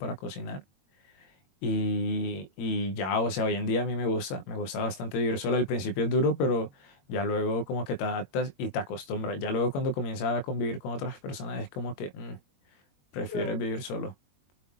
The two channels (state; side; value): late; right; 22 ms